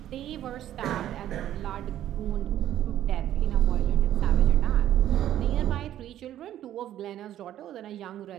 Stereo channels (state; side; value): quieter; left; 12.0 dB